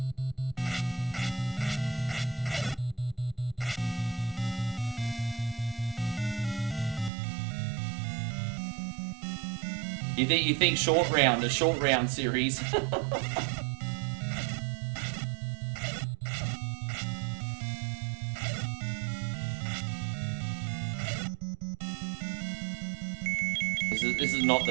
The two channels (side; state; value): left; drops out; at 7.1 s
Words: You think a short round series? This is not